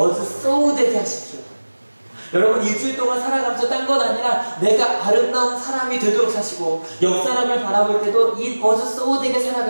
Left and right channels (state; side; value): inverted; both; correlation -1.00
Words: so 되게 하십시오. 여러분 일주일 동안 살아가면서 딴 건 아니라 내가 아름다운 사람이 되도록 사시고, 옆 사람을 바라볼 때도 It was so 되게